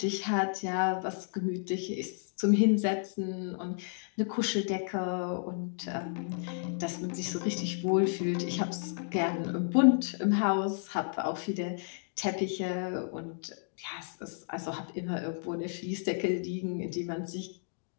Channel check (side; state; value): right; silent; digital silence